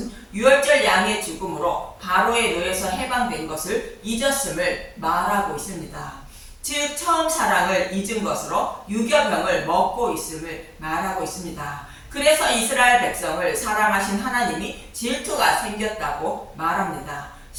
유월절 양의 죽음으로 바로의 노예에서 해방된 것을 잊었음을 말하고 있습니다. 즉 처음 사랑을 잊은 것으로 유교병을 먹고 있음을 말하고 있습니다. 그래서 이스라엘 백성을 사랑하신 하나님이 질투가 생겼다고 말합니다.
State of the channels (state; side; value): identical; both; correlation 1.00